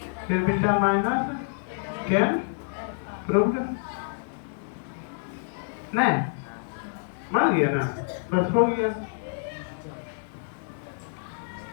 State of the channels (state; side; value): silent; right; 60 dB below the other